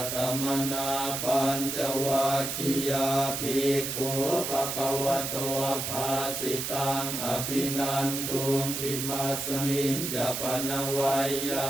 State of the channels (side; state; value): right; noise; hiss, 3 dB below the sound